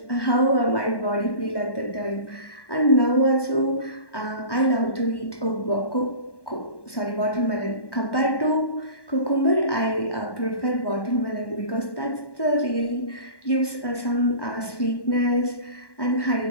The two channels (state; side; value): late; right; 1.1 ms